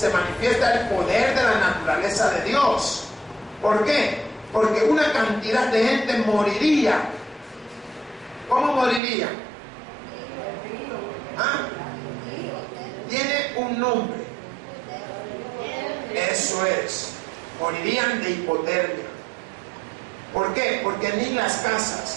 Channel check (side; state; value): left; drops out; at 9.0 s